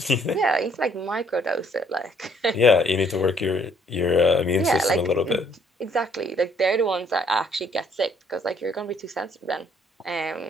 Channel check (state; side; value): normal; both; correlation 0.64